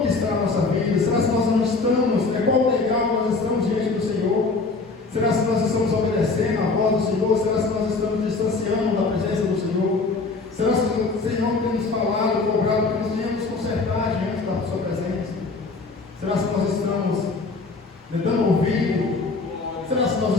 que está a nossa vida? Será se nós não estamos, qual legal nós estamos diante do Senhor? Será se nós estamos obedecendo à voz do Senhor? Será se nós estamos distanciando da presença do Senhor? Será se o Senhor tem nos falado, cobrado, que nós venhamos consertar diante da sua presença? Será se nós estamos dando ouvido? Será se nós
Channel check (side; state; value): right; quieter; 3.9 dB